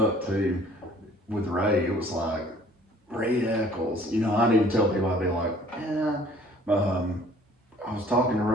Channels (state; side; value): normal; both; correlation 0.54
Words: up too, with Ray, it was like, Ray Echols. You know, I'd even tell people, I'd be like, I was talking to